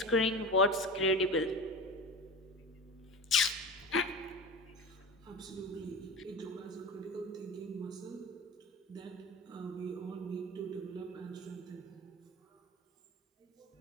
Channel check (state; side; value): normal; both; correlation 0.31